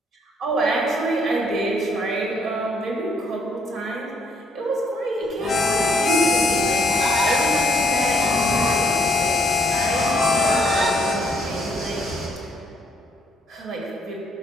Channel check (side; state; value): both; normal; correlation 0.68